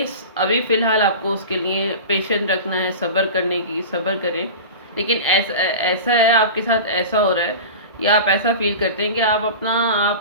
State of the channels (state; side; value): inverted; both; correlation -0.31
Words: ابھی فی الحال آپ کو اس کے لیے پیشنٹ رکھنا ہے، صبر کریں۔ لیکن ایسا ہے آپ کے ساتھ ایسا ہو رہا ہے یا آپ ایسا فیل کرتے ہیں کہ